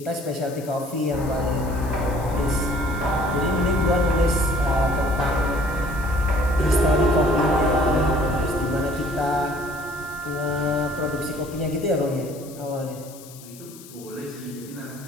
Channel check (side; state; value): left; noise; hiss, 19 dB below the sound